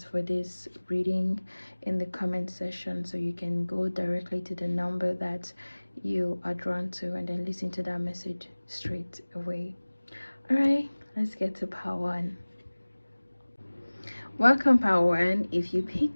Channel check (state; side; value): inverted; both; correlation -1.00